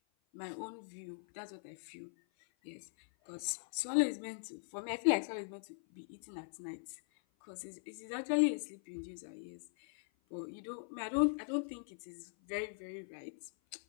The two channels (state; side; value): silent; right; 51 dB below the other